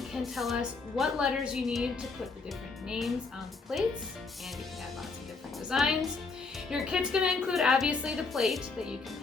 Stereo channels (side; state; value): right; quieter; 4.3 dB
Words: can tell us what letters you need to put the different names on the plates, and you can add lots of different designs. Your kit's going to include obviously the plate that you can